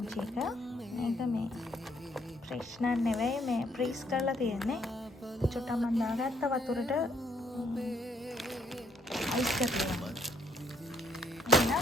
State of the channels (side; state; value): both; normal; correlation 0.68